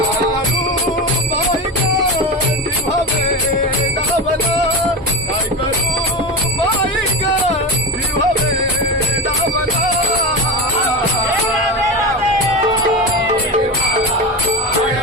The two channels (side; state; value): both; normal; correlation 0.22